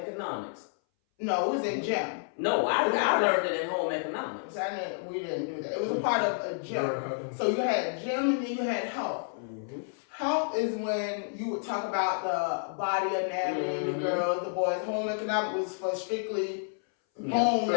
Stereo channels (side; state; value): right; silent; 58 dB below the other